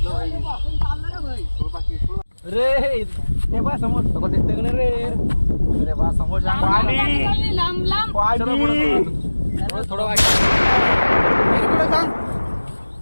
रे ते बा समोर सगळं दिसतंय का नाही रे? अरे बा समोर जा. लांब लांब. थोडं वाईट.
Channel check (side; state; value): both; inverted; correlation -1.00